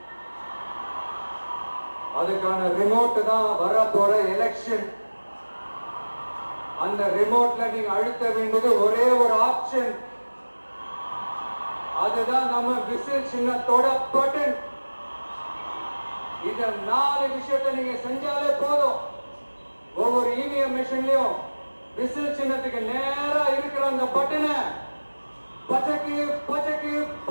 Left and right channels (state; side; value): inverted; both; correlation -1.00